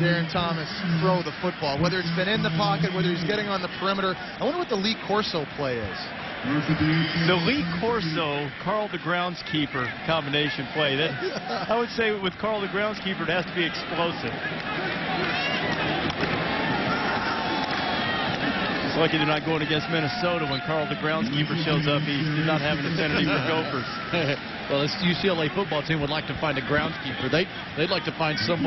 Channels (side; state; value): both; identical; correlation 1.00